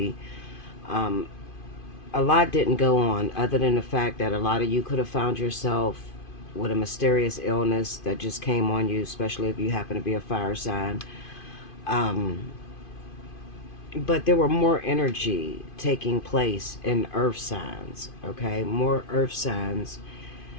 um, a lot didn't go on other than the fact that a lot of you could have found yourself with a mysterious illness that just came on you, especially if you happen to be a fire sign. Um, but there were more energy taking place in earth signs, okay? More earth signs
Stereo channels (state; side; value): late; right; 2.5 ms